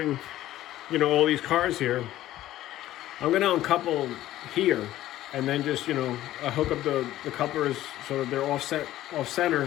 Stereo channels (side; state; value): right; quieter; 14.3 dB